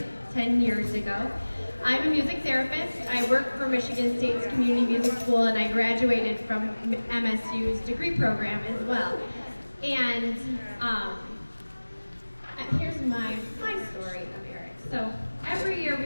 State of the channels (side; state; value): both; inverted; correlation -1.00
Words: 10 years ago. I'm a music therapist. I work for Michigan State's Community Music School, and I graduated from MSU's degree program as well. And here's my story of Eric. So every year